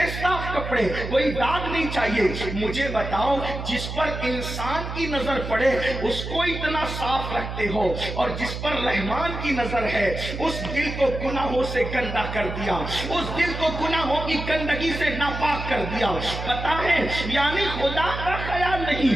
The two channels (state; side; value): noise; right; hum, 6 dB below the sound